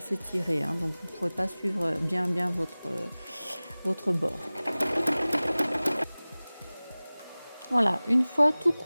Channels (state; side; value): inverted; both; correlation -0.99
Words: donc vous ne pourrez pas suivre bien votre bord. Voilà, une fois tout